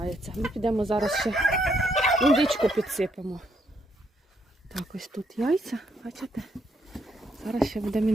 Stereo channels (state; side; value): normal; both; correlation 0.74